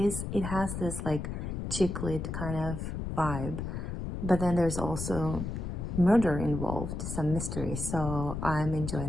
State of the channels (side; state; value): left; noise; rumble, 4 dB below the sound